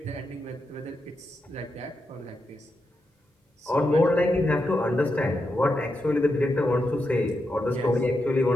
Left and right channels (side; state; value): both; normal; correlation 0.86